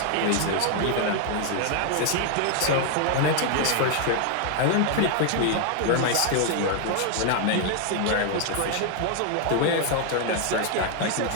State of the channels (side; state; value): both; different; correlation 0.00